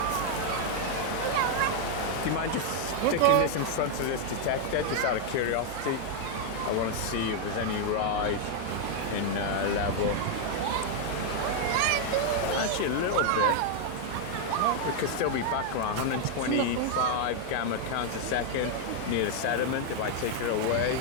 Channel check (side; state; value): both; different; correlation 0.00